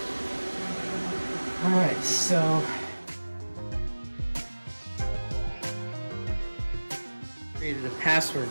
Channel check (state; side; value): inverted; both; correlation -1.00